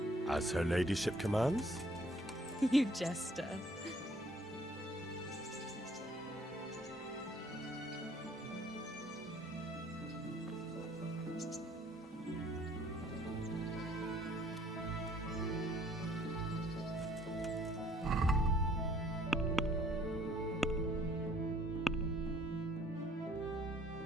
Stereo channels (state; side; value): normal; both; correlation 0.59